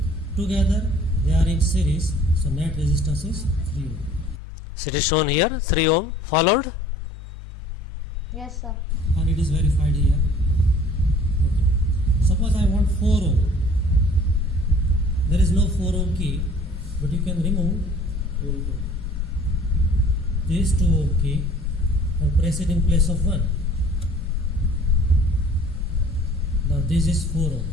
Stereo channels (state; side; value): normal; both; correlation 0.51